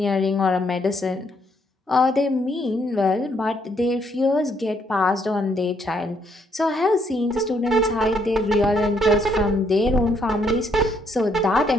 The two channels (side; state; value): both; normal; correlation 0.71